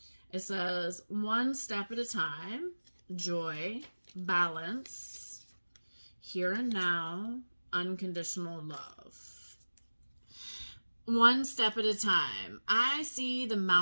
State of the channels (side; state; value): both; inverted; correlation -1.00